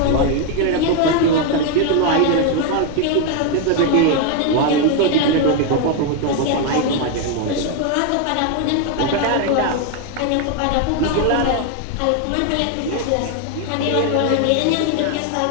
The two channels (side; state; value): both; different; correlation 0.01